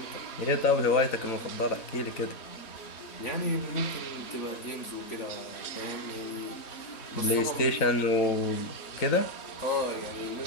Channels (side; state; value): right; late; 3.5 ms